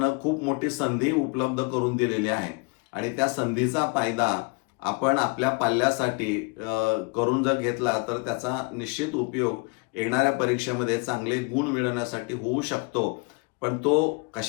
खूप मोठी संधी उपलब्ध करून दिलेली आहे आणि त्या संधीचा फायदा आपण आपल्या पाल्यासाठी करून जर घेतला तर त्याचा निश्चित उपयोग येणाऱ्या परीक्षेमध्ये चांगले गुण मिळवण्यासाठी होऊ शकतो. पण तो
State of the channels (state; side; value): quieter; right; 29.8 dB